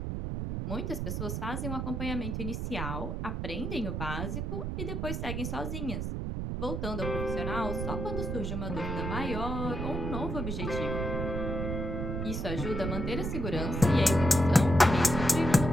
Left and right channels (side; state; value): right; noise; rumble, 2 dB below the sound